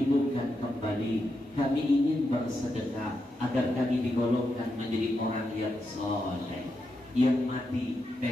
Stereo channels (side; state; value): both; normal; correlation 0.85